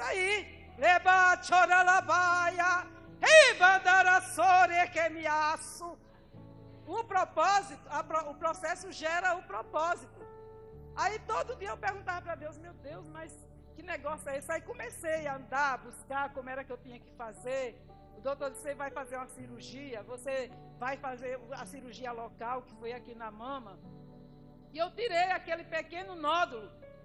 aí. Leba choralabaia, ribandarassore que me aço. O propósito, o processo gera o propósito. Aí todo dia eu perguntava para Deus, meu Deus, mas que negócio é esse? Aí comecei a andar, a buscar como era que eu tinha que fazer. O doutor disse, você vai fazer uma cirurgia, você vai fazer a cirurgia local, que foi aqui na mama. E eu tirei aquele pequeno nódulo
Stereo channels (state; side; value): identical; both; correlation 1.00